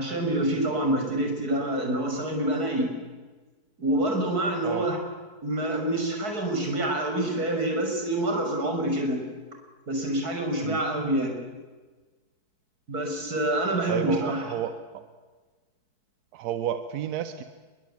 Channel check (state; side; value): late; left; 4.6 ms